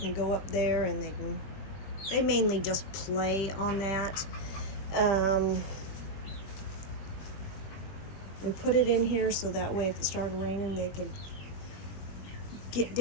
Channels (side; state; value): right; late; 21 ms